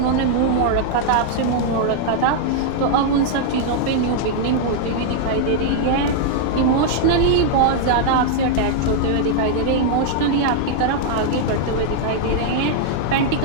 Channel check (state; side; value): different; both; correlation -0.01